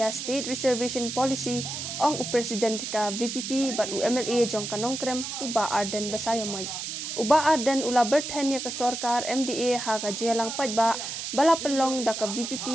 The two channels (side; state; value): right; noise; hiss, 6 dB below the sound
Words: State Reservation Policy ong president ka VPP bat UMLA jong kanong krem uba arden basayamay. Uba arden ula berthen ya ka sarkar MDA ha ka jelang pajba bala pelong da ka